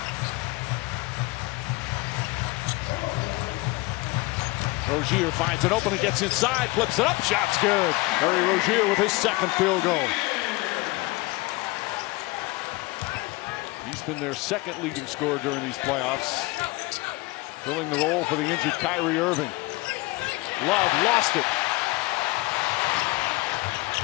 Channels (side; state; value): right; quieter; 22.4 dB